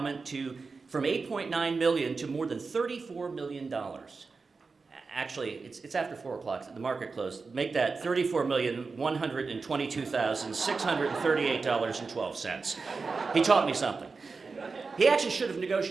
from $8.9 million to more than $34 million. Actually, it's after 4 o'clock, the market closed. Make that $34,122,638.12. He taught me something. He actually should have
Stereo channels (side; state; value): left; quieter; 4.4 dB